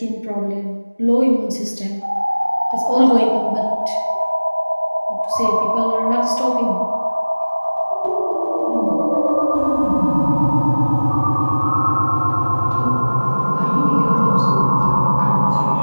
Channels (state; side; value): inverted; both; correlation -1.00